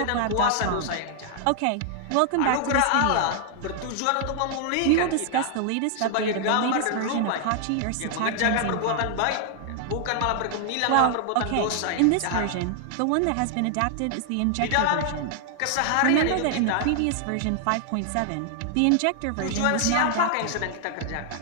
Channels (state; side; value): different; both; correlation 0.00